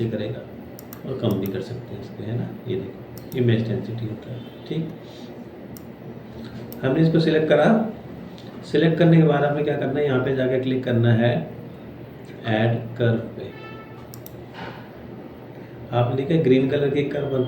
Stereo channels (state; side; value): identical; both; correlation 1.00